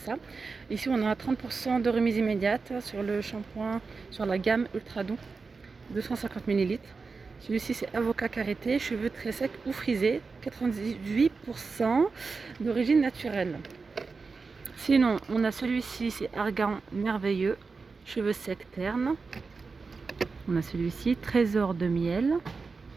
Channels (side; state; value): left; quieter; 4.5 dB